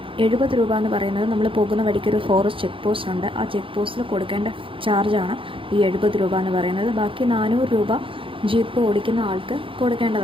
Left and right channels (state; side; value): late; left; 0.25 ms